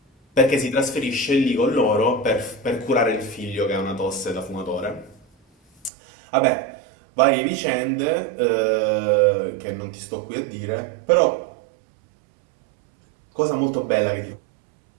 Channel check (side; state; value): left; drops out; at 5.9 s